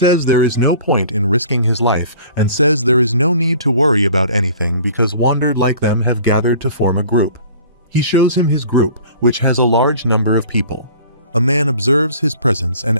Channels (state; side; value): inverted; both; correlation -0.48